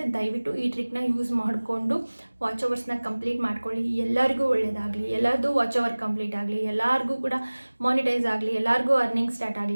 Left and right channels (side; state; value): both; inverted; correlation -1.00